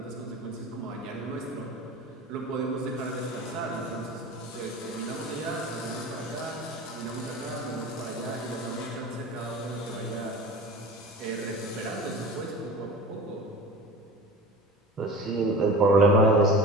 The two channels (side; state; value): both; normal; correlation 0.35